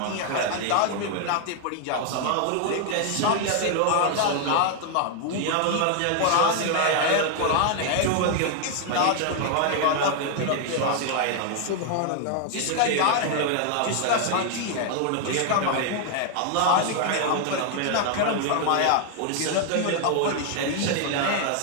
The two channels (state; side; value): different; both; correlation 0.00